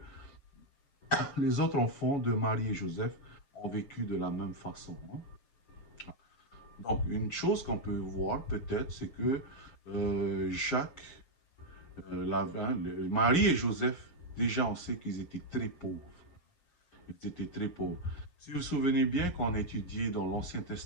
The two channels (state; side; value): late; right; 7.0 ms